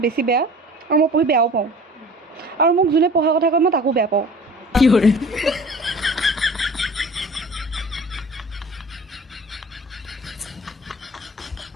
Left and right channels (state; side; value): normal; both; correlation 0.43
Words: বেছি বেয়া আৰু মই পঢ়ি বেয়াও পাওঁ আৰু মোক যোনে পঢ়া কথা কয় মই তাকো বেয়া পাওঁ কি কৰে